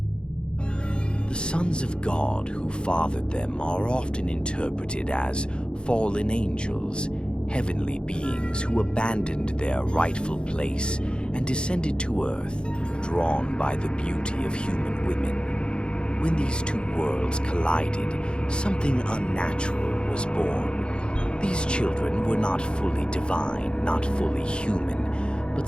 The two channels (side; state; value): right; late; 0.052 ms